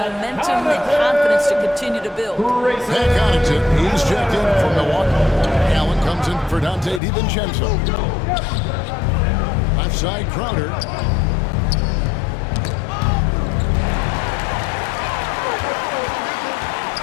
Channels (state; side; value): drops out; right; at 7.0 s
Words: and confidence to continue to build. Pat Connaughton, he's checked in from Milwaukee. Allen comes in for Dante DiVincenzo. Left side, Crowder.